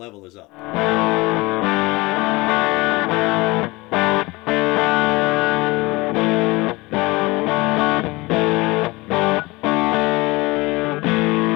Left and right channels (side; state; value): right; quieter; 22.7 dB